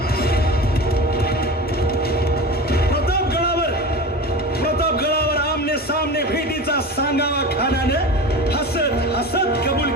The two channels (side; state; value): both; normal; correlation 0.31